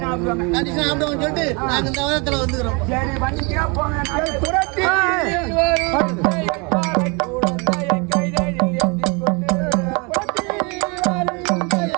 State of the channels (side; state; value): left; quieter; 30.8 dB